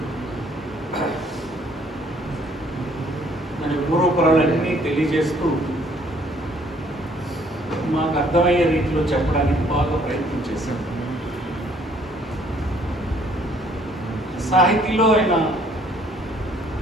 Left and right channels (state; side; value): normal; both; correlation 0.62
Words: మన పూర్వపురాలన్నీ తెలియజేస్తూ మాకు అర్థమయ్యే రీతిలో చెప్పడానికి బాగా ప్రయత్నం చేశాం. సాహితీలో ఆయన